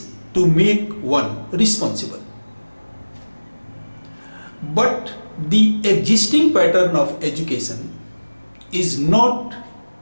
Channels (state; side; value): inverted; both; correlation -1.00